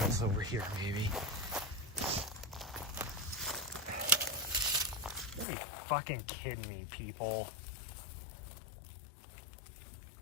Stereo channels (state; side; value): drops out; right; at 5.5 s